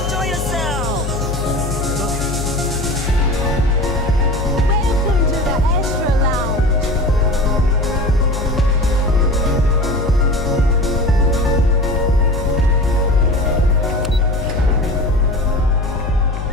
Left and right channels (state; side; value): noise; left; hum, 5 dB below the sound